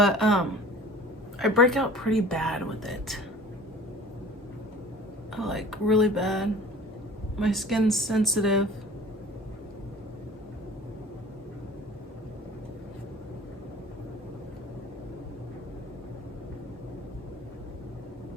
I break out pretty bad with it. Like really bad. My skin's sensitive.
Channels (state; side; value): normal; both; correlation 0.45